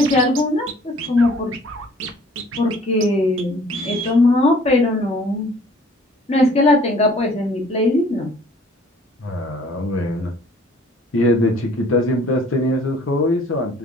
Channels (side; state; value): both; normal; correlation 0.54